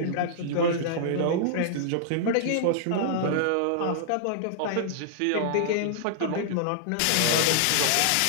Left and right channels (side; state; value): both; different; correlation -0.01